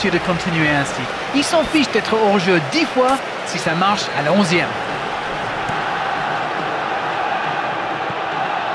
de continuer ainsi. Il s'en fiche d'être hors-jeu 10 fois si ça marche à la 11e.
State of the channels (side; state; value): both; identical; correlation 1.00